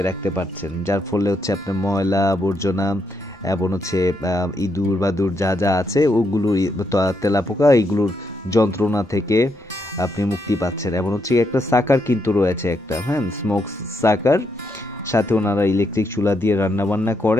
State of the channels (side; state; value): both; normal; correlation 0.79